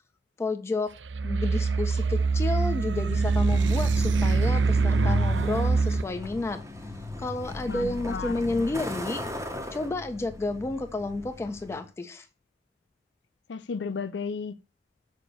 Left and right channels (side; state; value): both; normal; correlation 0.83